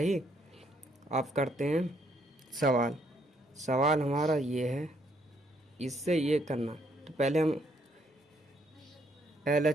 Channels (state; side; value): normal; both; correlation 0.70